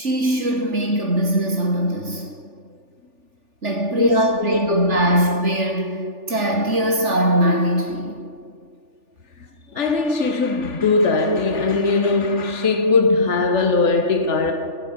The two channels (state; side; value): late; left; 3.4 ms